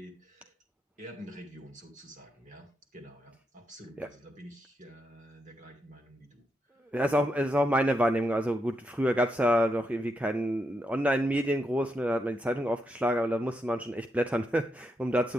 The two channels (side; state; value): both; normal; correlation 0.83